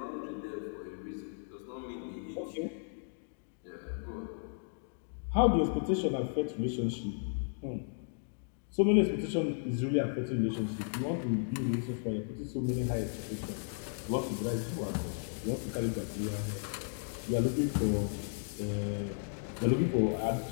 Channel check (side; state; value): right; silent; digital silence